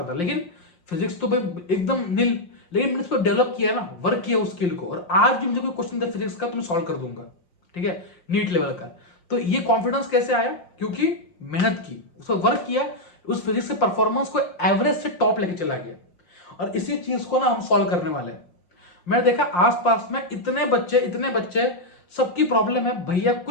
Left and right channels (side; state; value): right; late; 5.7 ms